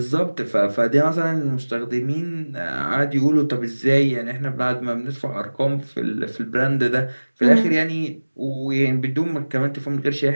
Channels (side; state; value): both; inverted; correlation -1.00